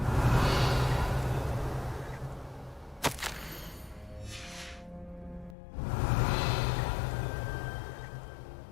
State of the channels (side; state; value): right; drops out; at 5.6 s